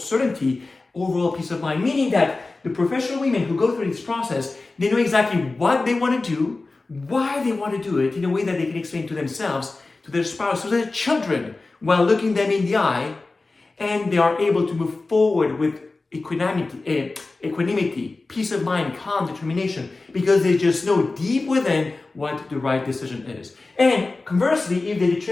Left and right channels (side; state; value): right; quieter; 3.5 dB